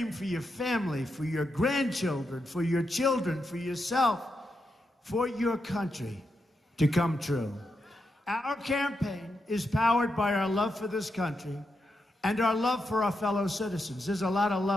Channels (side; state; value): both; normal; correlation 0.85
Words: for your family, for your grandchildren, for your children, for yourself, for your country to come true. Our campaign is powered by our love for this country and our love for our fellow citizens. There's a lot of